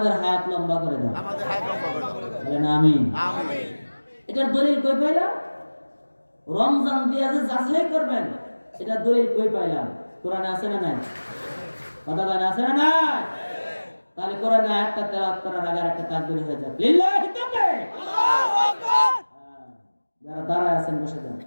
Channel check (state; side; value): inverted; both; correlation -1.00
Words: হায়াত লম্বা করে দাও, আমাদের হায়াত লম্বা করে দাও, বলেন আমিন। আমিন। এটার দলিল কই পাইলাম? রমজান দিয়ে যে যাচাই করবেন, এটা দলিল কই পাইলাম? কোরআনে আছে না নাই? কথা বলেন, আছে না নাই? তাহলে কোরআনে আয়াতটা তেলাওয়াত করার আগে একটা তাকবীর হয়ে যাক, লিল্লাহি তাকবীর, আল্লাহু আকবার। যারা দাঁড়ায় আছেন বসে যান।